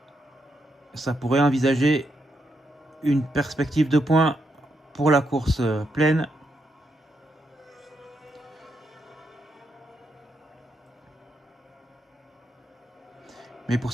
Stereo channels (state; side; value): normal; both; correlation 0.81